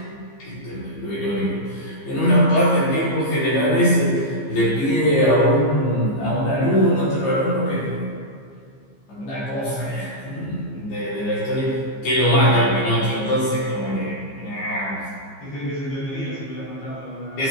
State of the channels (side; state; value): right; late; 15 ms